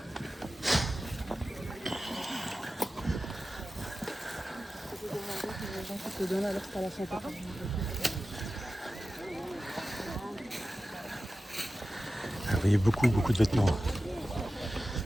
Vous voyez beaucoup de vêtements.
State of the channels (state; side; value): normal; both; correlation 0.94